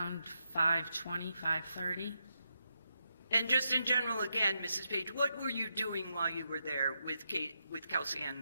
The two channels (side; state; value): both; inverted; correlation -0.83